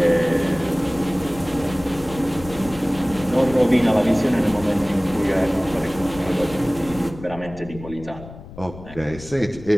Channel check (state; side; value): noise; left; rumble, 16 dB below the sound